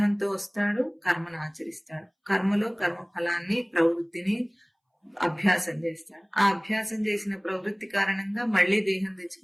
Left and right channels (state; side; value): identical; both; correlation 1.00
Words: వస్తాడు, కర్మను ఆచరిస్తాడు, కర్మలో కర్మ ఫలాన్ని, ప్రవృత్తిని అభ్యాసం చేస్తాడు. ఆ అభ్యాసం చేసిన ప్రవృత్తి కారణంగా మళ్ళీ దేహం